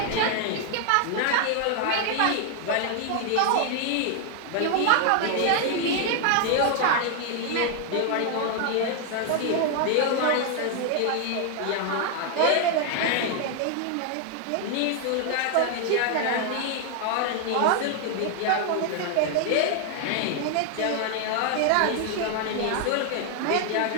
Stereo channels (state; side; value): different; both; correlation 0.00